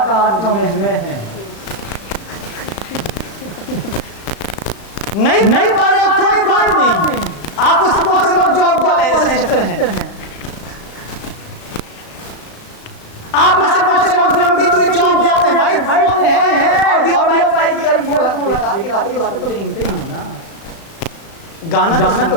मुझ में है। नहीं पा रहे कोई बात नहीं। आप उससे बहुत से लोग जॉब वाले हैं जैसे सिस्टर हैं। आप में से बहुत से लोग लंबी दूरी जॉब जाते हैं भाई फोन है ऑडियो बेकार की बातें तो सुनते ही हो ना। गाना तो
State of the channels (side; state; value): right; late; 36 ms